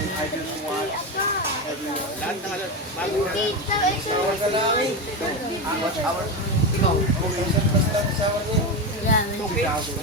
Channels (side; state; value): both; normal; correlation 0.16